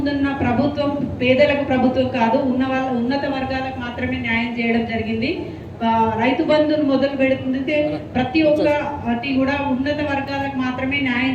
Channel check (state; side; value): identical; both; correlation 1.00